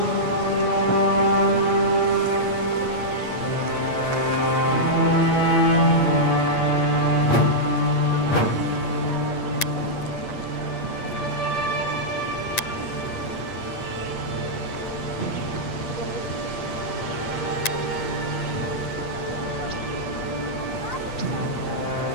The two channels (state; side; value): late; right; 8.6 ms